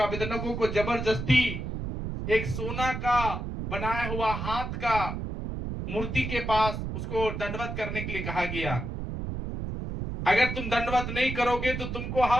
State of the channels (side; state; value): right; noise; rumble, 5 dB below the sound